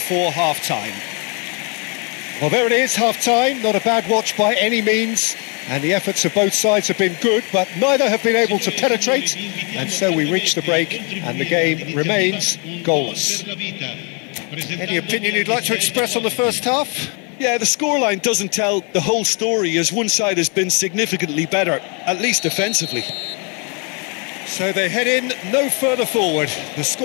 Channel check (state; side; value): quieter; right; 35.2 dB